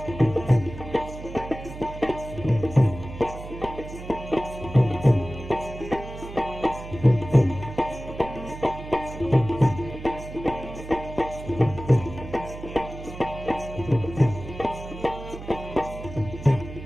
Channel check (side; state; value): right; noise; hum, 12 dB below the sound